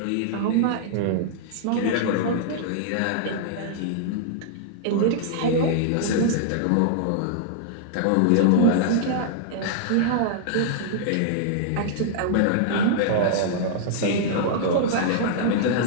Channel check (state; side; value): different; both; correlation -0.01